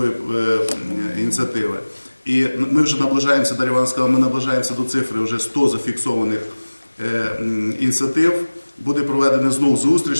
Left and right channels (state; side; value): inverted; both; correlation -1.00